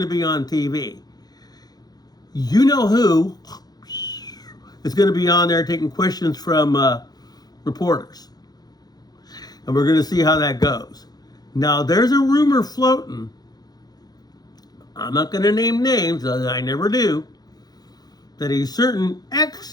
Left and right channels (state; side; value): late; right; 0.19 ms